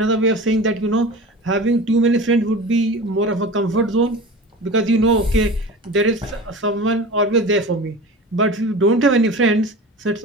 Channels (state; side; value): normal; both; correlation 0.34